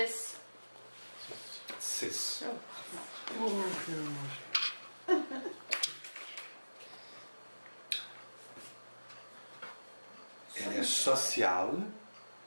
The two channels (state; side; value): inverted; both; correlation -1.00